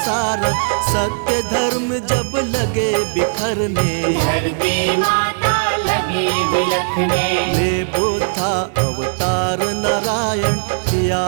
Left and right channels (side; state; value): left; silent; digital silence